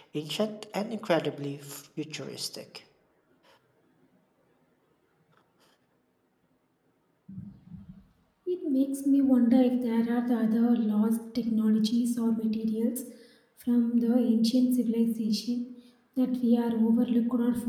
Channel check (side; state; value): both; identical; correlation 1.00